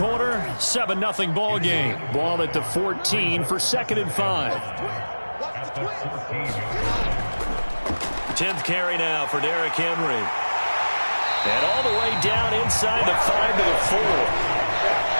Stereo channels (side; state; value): both; inverted; correlation -1.00